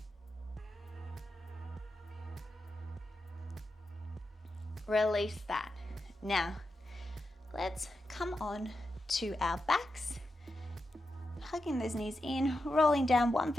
Release that. Now, let's come on to our backs. Hugging those knees in, rolling down one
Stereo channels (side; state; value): both; normal; correlation 0.88